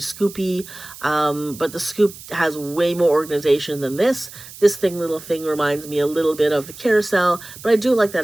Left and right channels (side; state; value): right; noise; hiss, 16 dB below the sound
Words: but the scoop has way more organization than this. This little thing reminds me a little bit of the carousel, but I do like